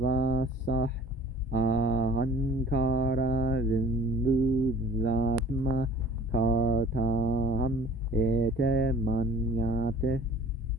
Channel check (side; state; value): both; normal; correlation 0.49